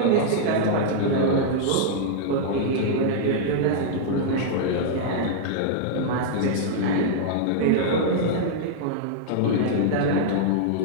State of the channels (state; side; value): different; both; correlation -0.01